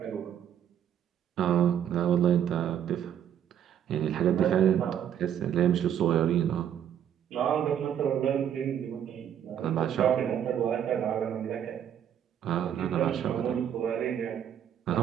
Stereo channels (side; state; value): left; quieter; 9.6 dB